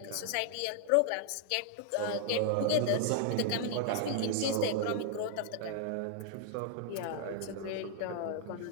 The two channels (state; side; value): different; both; correlation -0.01